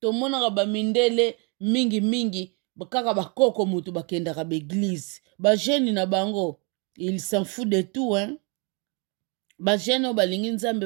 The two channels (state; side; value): quieter; left; 33.6 dB